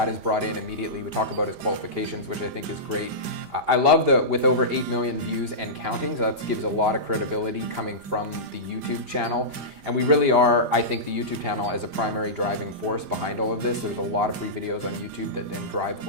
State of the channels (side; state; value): left; late; 5.0 ms